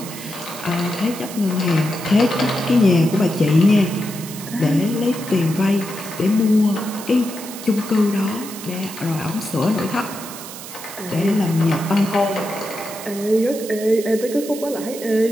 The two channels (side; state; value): right; noise; hiss, 12 dB below the sound